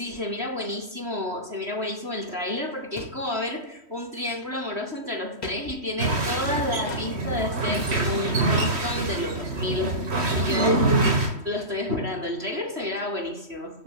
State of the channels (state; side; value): late; left; 3.1 ms